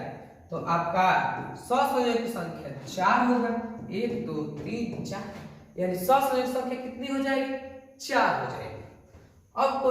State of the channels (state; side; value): identical; both; correlation 1.00